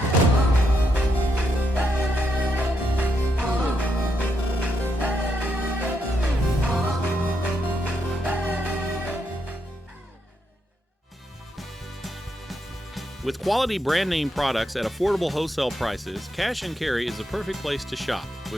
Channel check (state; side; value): normal; both; correlation 0.80